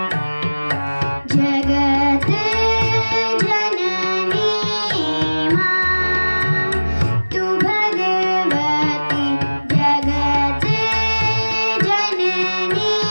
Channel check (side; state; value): both; inverted; correlation -1.00